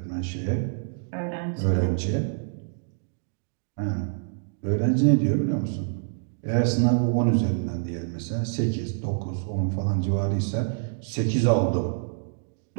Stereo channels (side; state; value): left; silent; digital silence